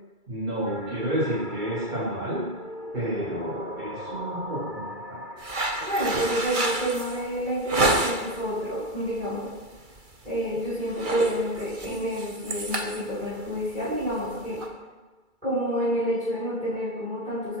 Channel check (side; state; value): left; late; 2.3 ms